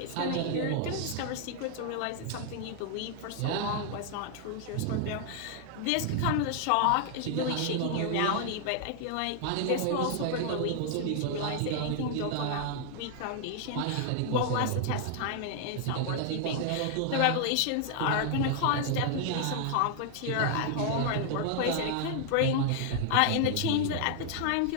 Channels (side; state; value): both; different; correlation 0.00